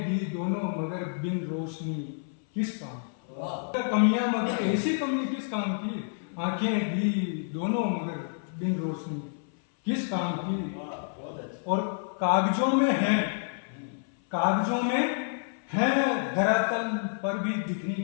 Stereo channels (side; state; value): right; silent; 59 dB below the other